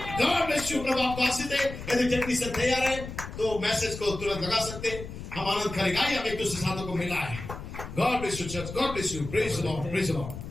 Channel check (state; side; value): noise; left; rumble, 10 dB below the sound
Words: God bless you. प्रभु आपको आशीष दे। यदि टेक्नीशियन तैयार है तो मैसेज को तुरंत लगा सकते हैं, हम आनंद करेंगे। हम एक दूसरे साथों को मिला है। God bless you church, God bless you. Praise the Lord, praise the